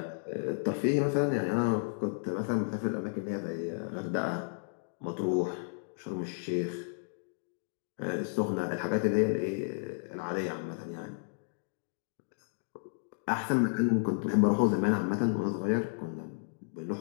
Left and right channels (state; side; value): silent; right; digital silence